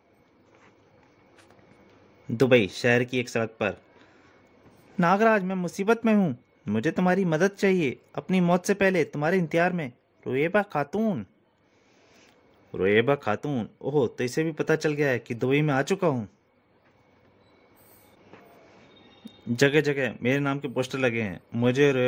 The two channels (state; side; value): identical; both; correlation 1.00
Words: दुबई शहर की एक सड़क पर। नागराज, मैं मुसीबत में हूँ, मुझे तुम्हारी मदद चाहिए, अपनी मौत से पहले तुम्हारे इंतजार में। रोएबा खातून। रोएबा खातून, ओह, तो इसे भी पता चल गया है कि दुबई में आ चुका हूँ। जगह जगह मेरे नाम के पोस्टर लगे हैं, मुझे